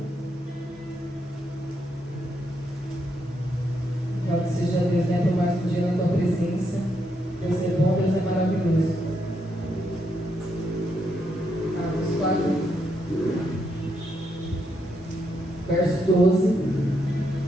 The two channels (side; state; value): both; normal; correlation 0.79